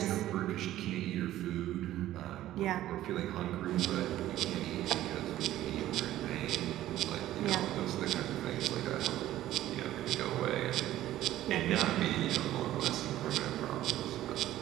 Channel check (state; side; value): quieter; left; 13.9 dB